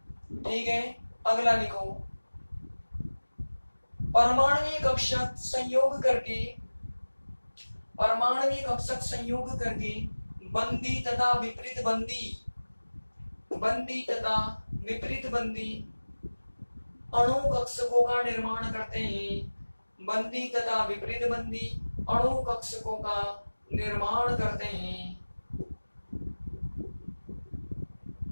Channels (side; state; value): both; inverted; correlation -1.00